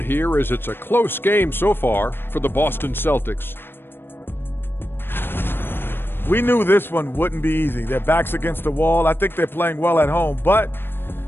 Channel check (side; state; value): right; late; 0.10 ms